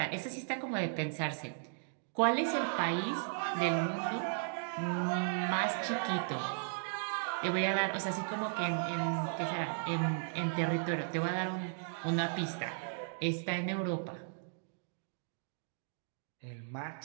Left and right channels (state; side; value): silent; left; digital silence